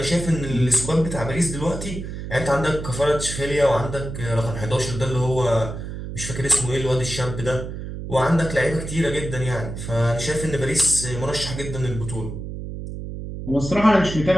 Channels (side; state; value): right; noise; hum, 8 dB below the sound